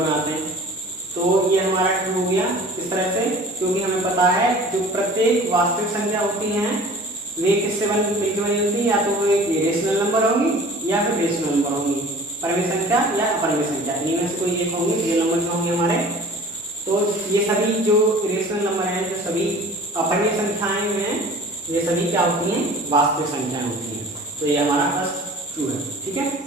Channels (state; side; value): normal; both; correlation 0.45